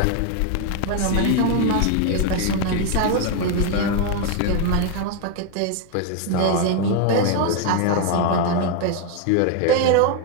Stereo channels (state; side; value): different; both; correlation 0.01